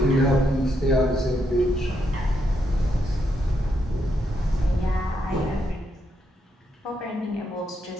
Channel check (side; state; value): both; normal; correlation 0.79